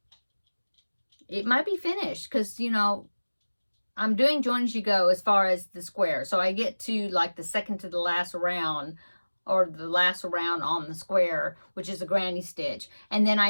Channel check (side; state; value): both; inverted; correlation -1.00